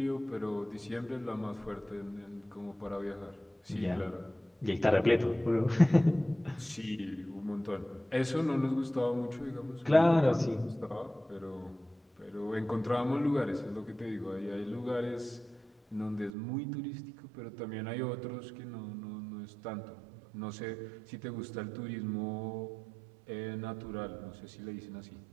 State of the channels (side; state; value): left; drops out; at 16.3 s